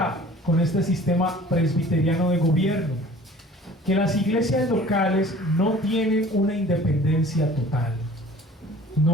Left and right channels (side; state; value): both; normal; correlation 0.48